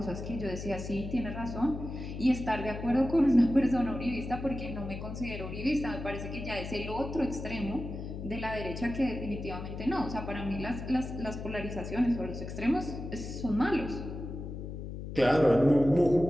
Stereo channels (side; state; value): left; noise; hum, 8 dB below the sound